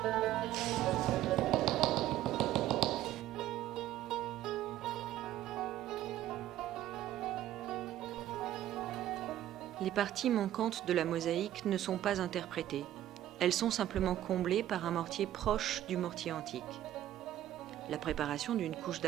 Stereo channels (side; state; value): left; quieter; 12.9 dB